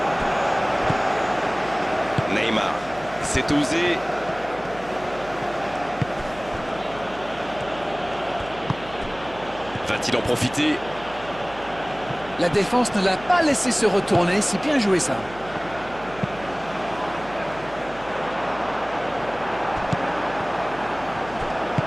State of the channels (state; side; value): noise; right; hum, 18 dB below the sound